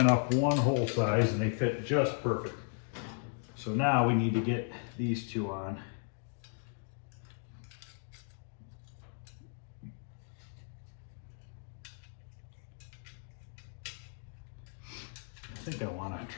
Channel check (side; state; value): right; silent; 54 dB below the other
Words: up one hole size and they fit just perfect. So now we need to get these two on. I think I want to